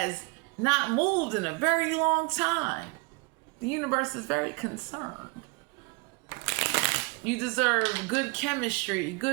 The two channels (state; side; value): quieter; left; 27.9 dB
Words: not moved in a very long time. The universe is very concerned. You deserve good chemistry,